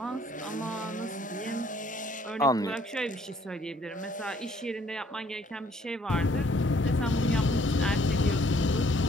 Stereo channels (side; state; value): both; normal; correlation 0.63